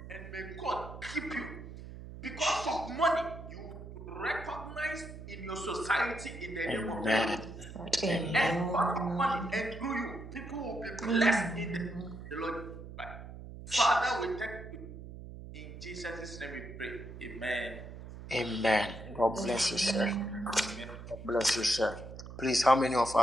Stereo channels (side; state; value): right; noise; hum, 12 dB below the sound